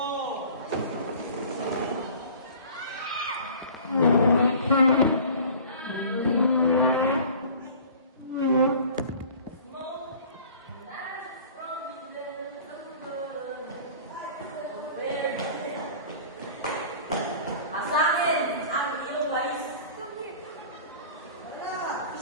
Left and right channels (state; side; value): inverted; both; correlation -0.44